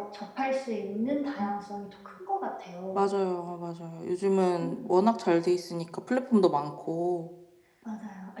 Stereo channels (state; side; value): identical; both; correlation 1.00